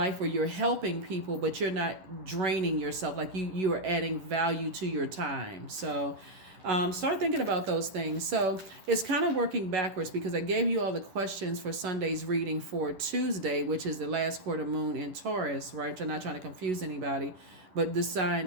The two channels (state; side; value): late; left; 10 ms